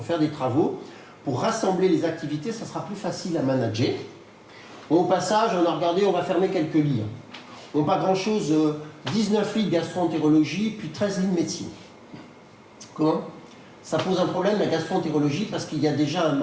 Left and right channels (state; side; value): identical; both; correlation 1.00